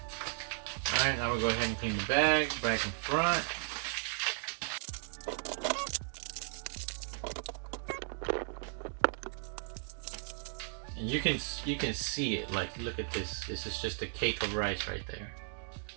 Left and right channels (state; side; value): silent; left; 54 dB below the other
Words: Alright, now we'll go ahead and clean the bag, back and front. And you can see it, like look at this. This is just a cake of rice right there.